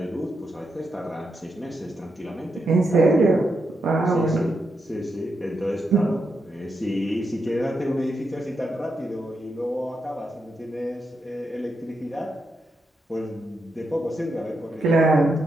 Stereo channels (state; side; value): normal; both; correlation 0.83